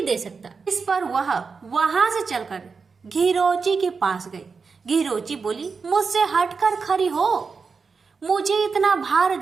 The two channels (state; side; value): quieter; left; 5.0 dB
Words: दे सकता। इस पर वह वहां से चलकर घीरोची के पास गई। घीरोची बोली मुझसे हटकर खड़ी हो, मुझे इतना भार